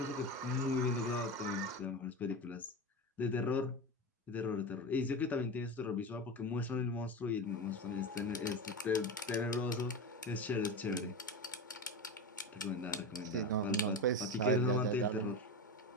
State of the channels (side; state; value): both; normal; correlation 0.23